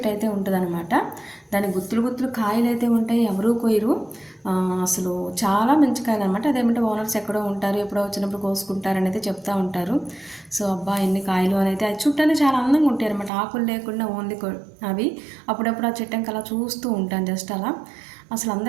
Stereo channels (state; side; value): drops out; left; at 13.3 s